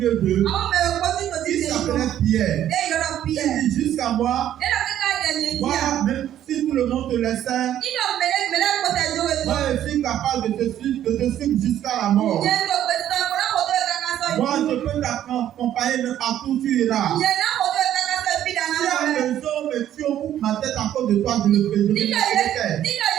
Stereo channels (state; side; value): quieter; left; 11.4 dB